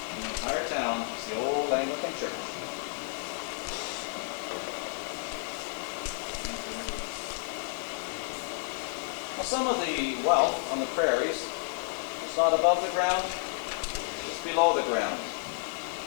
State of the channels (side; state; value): right; silent; 57 dB below the other